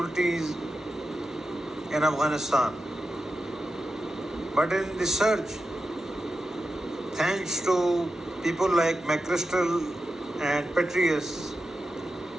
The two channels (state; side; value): normal; both; correlation 0.90